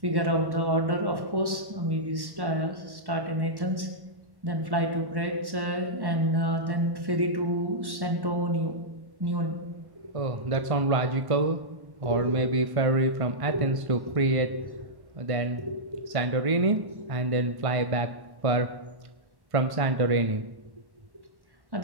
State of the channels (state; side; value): late; left; 1.1 ms